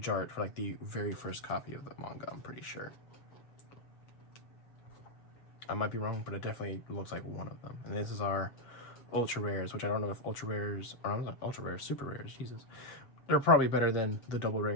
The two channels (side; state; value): right; late; 7.2 ms